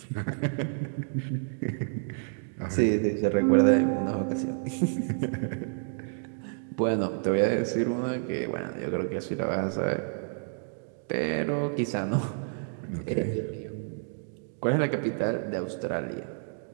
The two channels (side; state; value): left; silent; digital silence